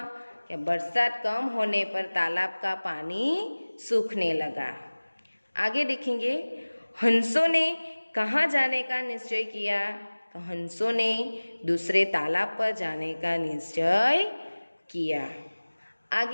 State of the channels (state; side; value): inverted; both; correlation -1.00